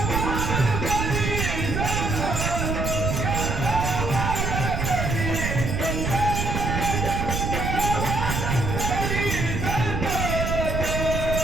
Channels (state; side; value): noise; right; rumble, 1 dB below the sound